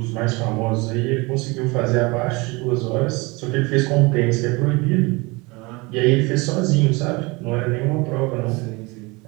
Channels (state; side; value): quieter; left; 25.4 dB